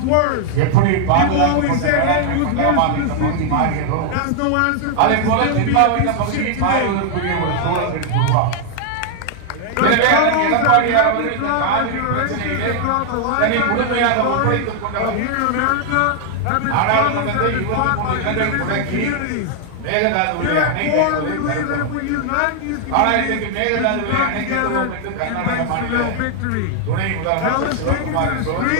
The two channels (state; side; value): different; both; correlation 0.00